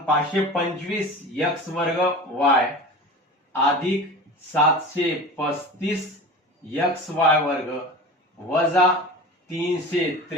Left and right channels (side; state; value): both; normal; correlation 0.33